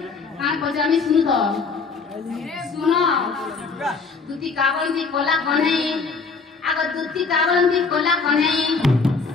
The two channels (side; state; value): right; quieter; 4.6 dB